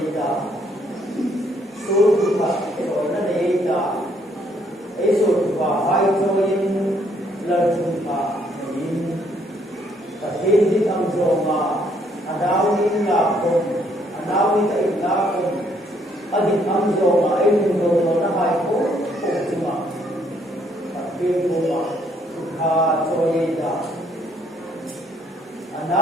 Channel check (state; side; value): normal; both; correlation 0.68